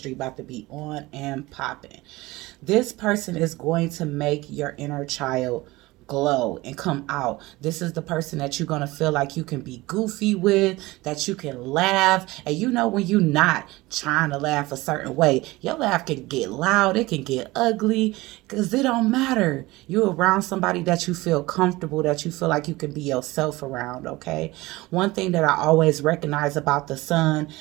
about to be on and popping. This person is going to make your inner child glow and come out. This is the person that you're going to feel like you can be goofy with, that you can laugh. And you know when you're not trying to laugh a certain way, your laugh can get loud, it can get ugly, because it don't matter. You're around somebody that you feel comfortable, that you feel like you can be yourself around, okay? One thing that I always recognize about the Sun,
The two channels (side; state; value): left; quieter; 20.3 dB